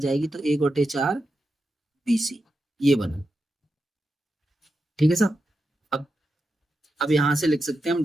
तो 1 बटे 4 BC, ये बना। ठीक है साहब, अब यहां से लिख सकते हैं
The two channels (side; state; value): both; normal; correlation 0.88